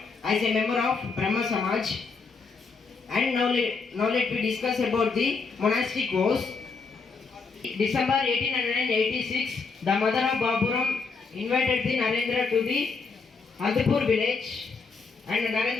as a member of Brahma Samaj. And now let me discuss about the monastic vows. December 1886, the mother of Baburam invited the Narendra to the Andhpur village, and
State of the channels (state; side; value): quieter; right; 4.7 dB